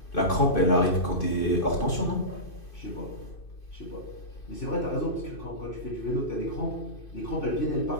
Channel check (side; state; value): right; late; 2.6 ms